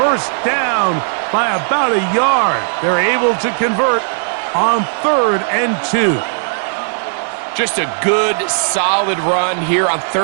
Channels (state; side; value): silent; left; digital silence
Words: down by about a yard. They're able to convert on 3rd and 2. Just a good, solid run here on